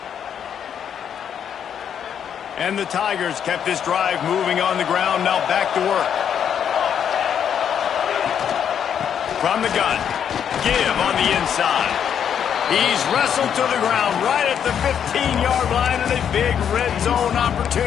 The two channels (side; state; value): right; quieter; 8.5 dB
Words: And the Tigers kept this drive moving on the ground. Now back to work. From the gun. Give on the inside. He's wrestled to the ground right at the 15-yard line, and a big red zone